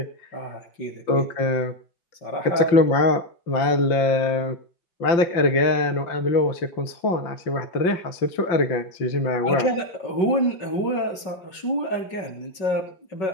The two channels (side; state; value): right; late; 5.3 ms